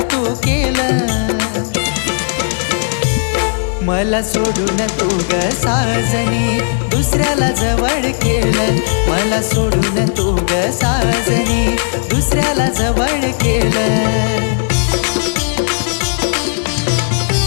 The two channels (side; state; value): right; silent; digital silence